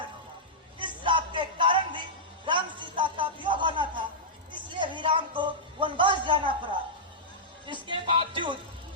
होगा। इस श्राप के कारण भी राम सीता का वियोग होना था, इसलिए भी राम को वनवास जाना पड़ा। इसके बावजूद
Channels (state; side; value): normal; both; correlation -0.11